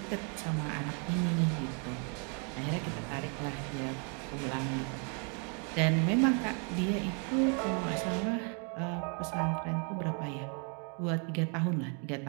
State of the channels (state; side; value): quieter; left; 38.6 dB